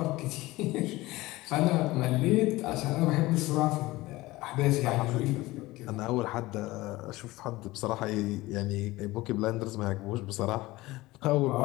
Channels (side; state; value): right; quieter; 19.3 dB